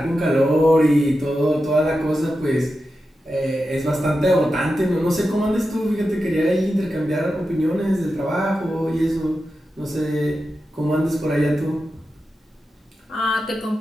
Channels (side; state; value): both; normal; correlation 0.90